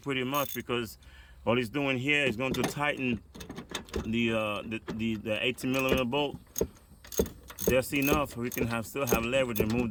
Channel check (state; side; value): identical; both; correlation 1.00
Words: much, because all he's doing here is going to tighten the 18 millimeter bolt just enough so we can still have leverage and move